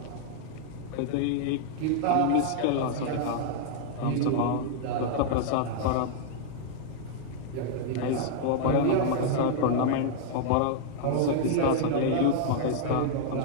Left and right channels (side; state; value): both; different; correlation -0.01